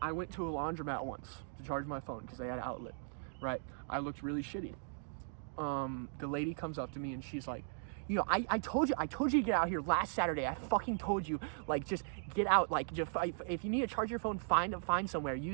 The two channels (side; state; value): left; silent; digital silence